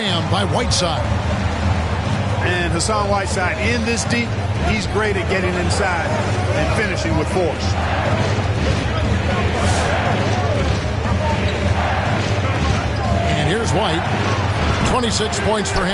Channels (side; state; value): both; identical; correlation 1.00